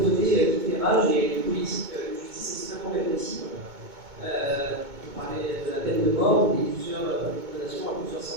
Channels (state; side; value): late; left; 2.2 ms